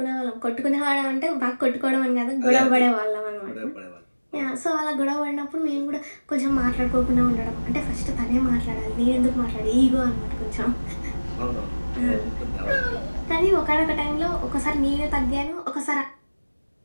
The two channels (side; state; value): both; inverted; correlation -1.00